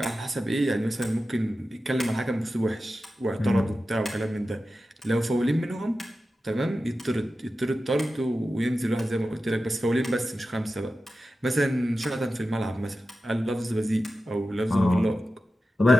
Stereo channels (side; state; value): both; normal; correlation 0.93